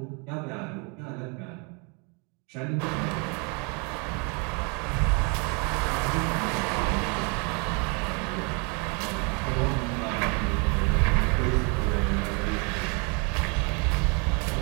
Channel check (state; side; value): quieter; left; 32.4 dB